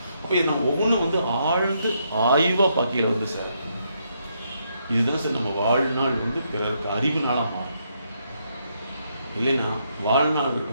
அப்போ இது நம்ம ஒவ்வொன்றும் வந்து ஆழ்ந்து ஆய்வாக பார்க்கையில் வந்து சார் இதுதான் சார் நம்ம வாழ்நாள் வந்து பிறருக்கு அறிவு நாளாக மாறும். இல்லைன்னா வாழ்நாள்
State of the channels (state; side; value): inverted; both; correlation -0.76